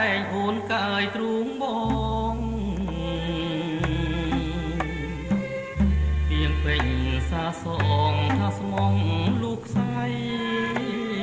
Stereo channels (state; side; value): identical; both; correlation 1.00